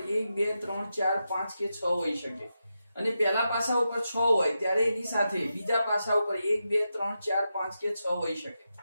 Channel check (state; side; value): inverted; both; correlation -0.88